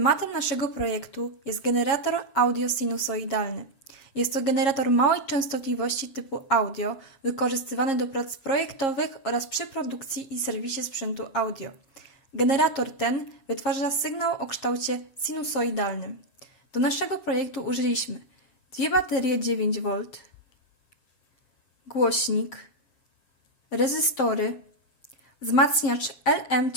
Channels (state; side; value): late; right; 7.4 ms